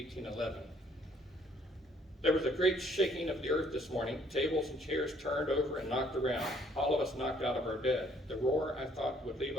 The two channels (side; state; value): both; normal; correlation 0.64